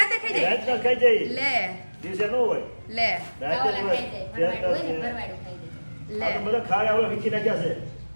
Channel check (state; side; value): inverted; both; correlation -1.00